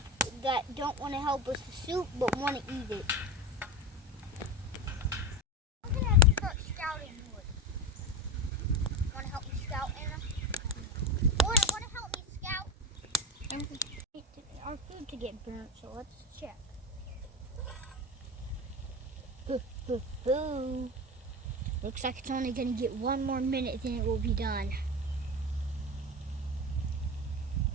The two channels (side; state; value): both; normal; correlation 0.23